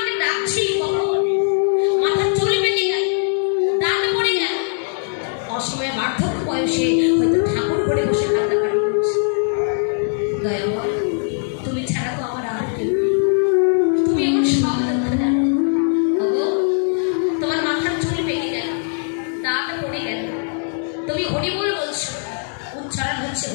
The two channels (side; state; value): right; silent; 57 dB below the other